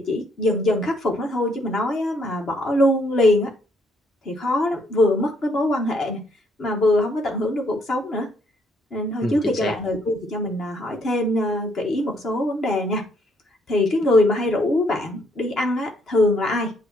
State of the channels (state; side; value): normal; both; correlation 0.69